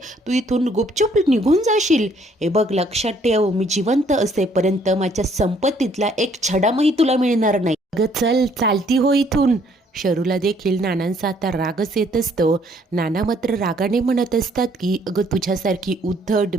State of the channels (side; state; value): both; normal; correlation 0.64